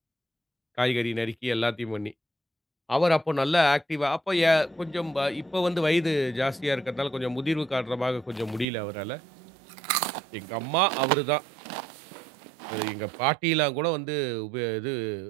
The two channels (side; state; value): left; drops out; at 8.7 s